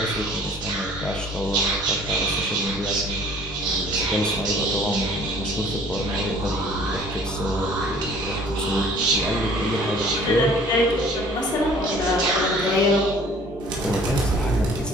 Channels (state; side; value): normal; both; correlation 0.52